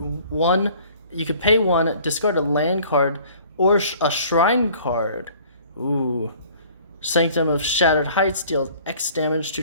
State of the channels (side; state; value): both; inverted; correlation -0.52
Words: 1, you could pay 1, discard a land card or a shrine card. Ooh. Sanctum of Shattered Heights deals X damage